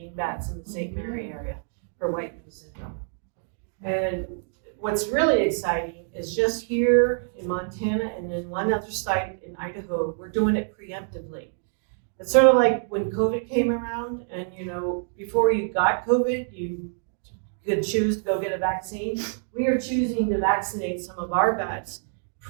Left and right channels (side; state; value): left; silent; digital silence